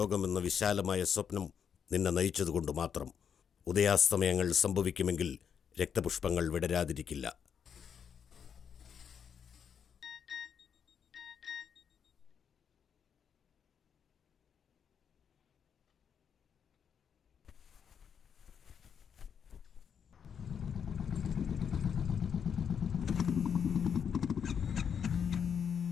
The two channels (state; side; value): quieter; right; 7.5 dB